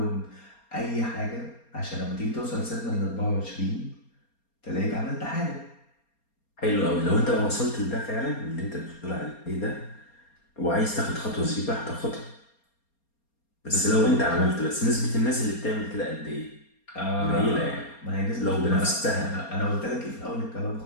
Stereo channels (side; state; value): right; late; 4.3 ms